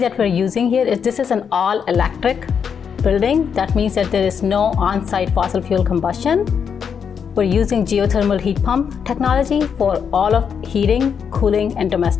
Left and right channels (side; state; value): right; quieter; 7.0 dB